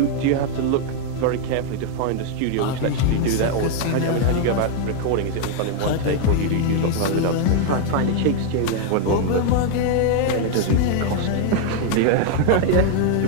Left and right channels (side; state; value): both; different; correlation 0.00